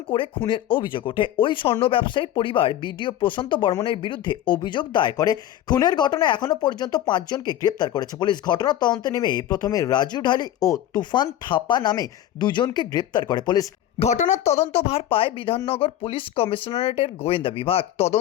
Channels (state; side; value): quieter; right; 12.3 dB